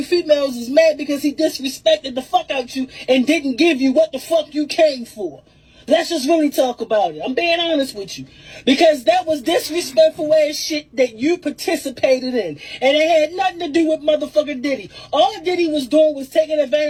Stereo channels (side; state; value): both; identical; correlation 1.00